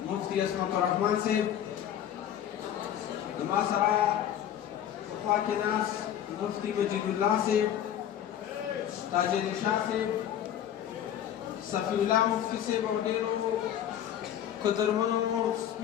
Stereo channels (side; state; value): right; quieter; 10.4 dB